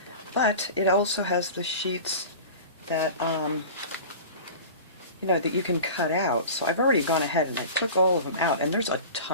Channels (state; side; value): inverted; both; correlation -0.36